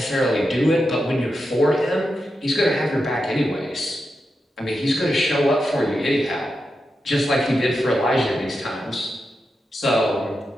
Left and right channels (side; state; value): both; normal; correlation 0.88